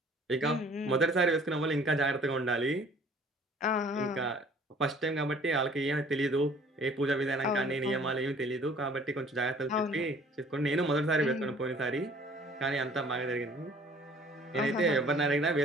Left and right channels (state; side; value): normal; both; correlation 0.54